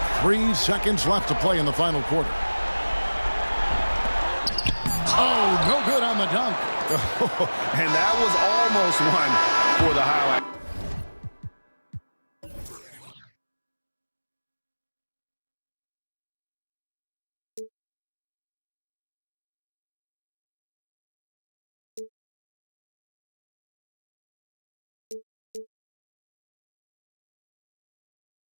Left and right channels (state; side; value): inverted; both; correlation -1.00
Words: 3 seconds left to play in the final quarter. Oh, no good on the dunk. And that was almost one for the highlight. We'll